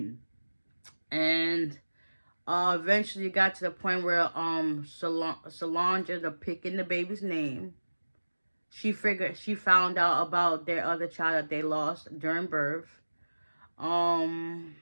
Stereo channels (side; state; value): both; inverted; correlation -1.00